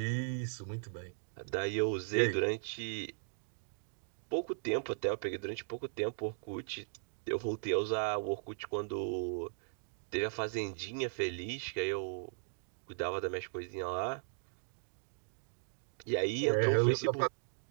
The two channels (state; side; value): silent; left; digital silence